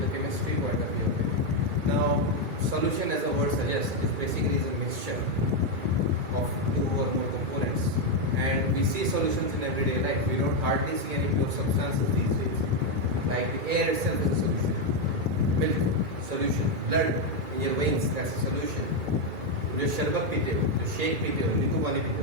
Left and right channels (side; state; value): left; late; 2.3 ms